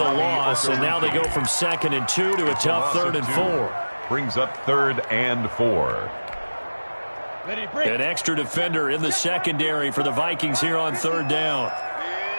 loss, and now they go from 2nd and 2 to a tough 3rd and 4. Brings up 3rd and 4. An extra defender in the secondary for the Vikings here on 3rd down. I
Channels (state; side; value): inverted; both; correlation -1.00